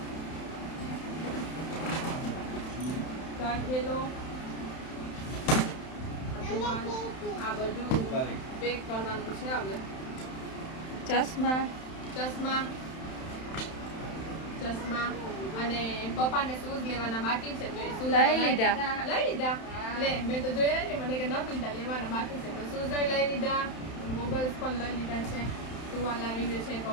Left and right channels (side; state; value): right; late; 31 ms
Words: થેલો આ બધું પેક કરવાનું છે. હવે ચશ્મા અને પપ્પાને શૂઝ લેવાના બાકી છે તો એ શૂઝ લઈ લીધા. લે મેં તો જોયા ને મને કે ન લીધા, લેવાના બાકી છે. તો શૂઝ લઈ લીધા, ગોગલ્સ પણ લઈ લીધા છે. ટુવાલ આવી ગયું છે,